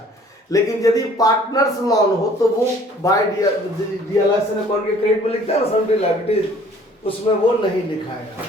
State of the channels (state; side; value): normal; both; correlation 0.55